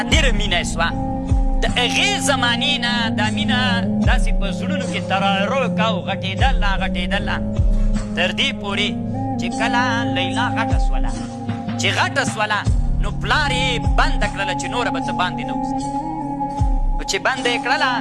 مینه یې سوه د هغې زمانې نه دا مینه داسې په زړونو کې ترارو کا او غټېدله تر دې پورې چې کله لیلا غټه سوله چې غټه سوله نو پلار یې بنده کړله چې نوره به ته باندې نه وځي نو چې بنده یې کړله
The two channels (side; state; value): both; identical; correlation 1.00